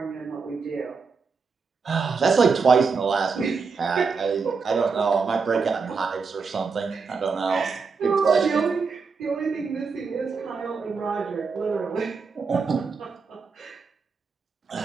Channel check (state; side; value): quieter; left; 5.0 dB